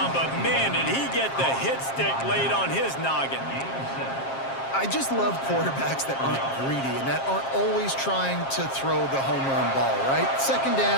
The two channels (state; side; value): late; right; 7.5 ms